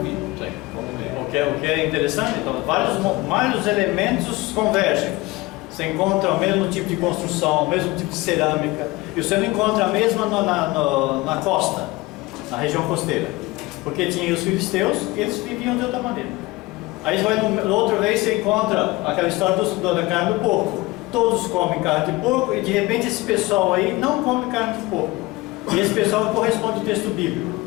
O que é interessante, então, vários elementos convergem. Você encontra o mesmo tipo de construção, o mesmo tipo de cerâmica, e você não encontra a mesma na costa, na região costeira, porque tinha os filisteus e eles viviam de outra maneira. Aí você vai outra vez, você encontra aquela história da carne do porco. Todos comem carne de porco e de repente esse pessoal aí não come carne de porco. E esse pessoal corresponde ao texto bíblico.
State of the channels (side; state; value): right; quieter; 21.3 dB